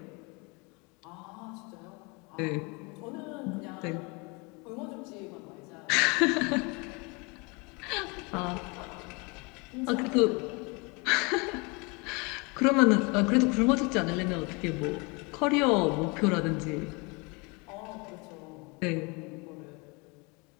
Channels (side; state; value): right; quieter; 29.1 dB